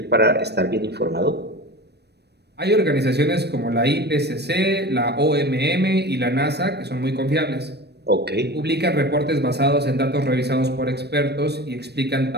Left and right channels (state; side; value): late; left; 0.48 ms